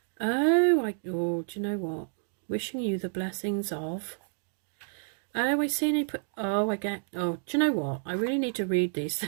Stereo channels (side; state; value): left; silent; 58 dB below the other